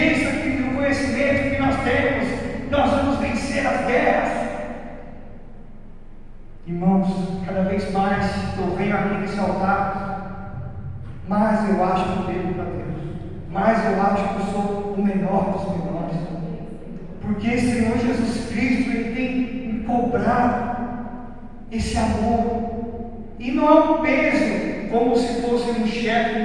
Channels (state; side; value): identical; both; correlation 1.00